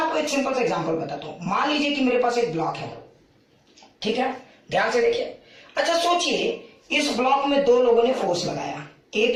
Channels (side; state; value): both; identical; correlation 1.00